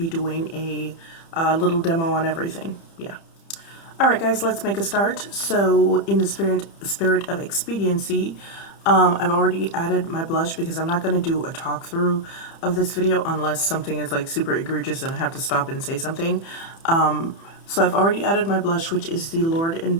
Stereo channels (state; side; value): late; right; 30 ms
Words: doing a little demo on everything. Yeah. Alright guys, let's make a start. So in the spirit of expediency, I've already added my blush because I'm not going to do a talk through of this video unless something is like super egregious and I have to stop and say something. So I've already added my blush, which is the Lord &